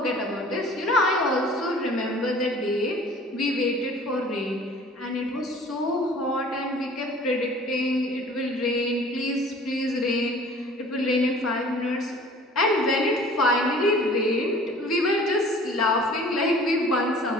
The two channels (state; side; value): normal; both; correlation 0.48